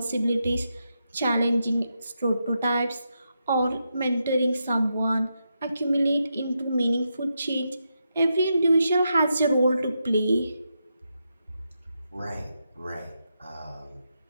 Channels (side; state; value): both; inverted; correlation -0.84